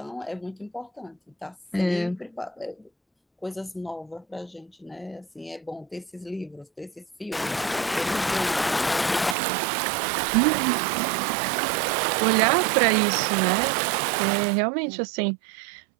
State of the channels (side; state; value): left; drops out; at 9.3 s